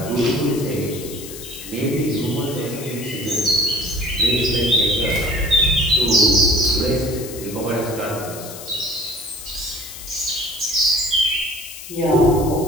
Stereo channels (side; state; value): left; noise; hiss, 13 dB below the sound